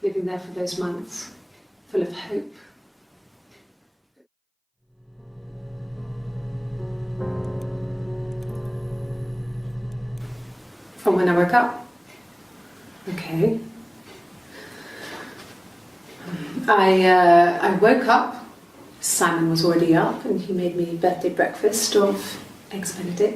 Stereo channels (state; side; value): identical; both; correlation 1.00